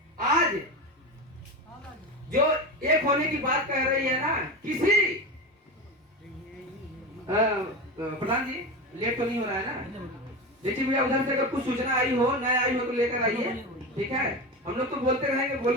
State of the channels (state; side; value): normal; both; correlation 0.22